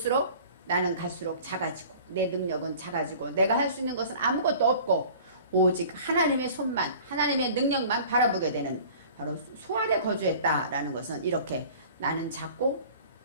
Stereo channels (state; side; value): inverted; both; correlation -0.45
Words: 나는 갈수록 작아지고 내 능력은 작아지고 내가 할 수 있는 것은 아무것도 없고 오직 하나님의 손만 하나님의 능력만 바라보게 되는 바로 수알에 거주했다라는 것은 이렇게 나는 작고